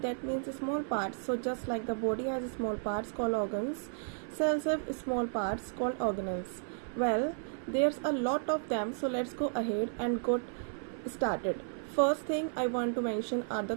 that means small parts. So just like the body has small parts called organs, cells have small parts called organelles. Well, there's a lot of them, so let's go ahead and get started. First thing I want to mention are the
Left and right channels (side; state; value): left; silent; 56 dB below the other